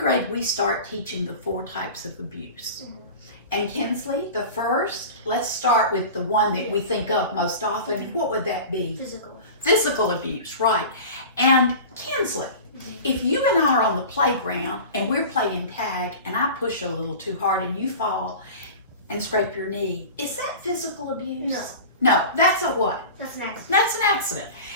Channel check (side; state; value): both; inverted; correlation -0.35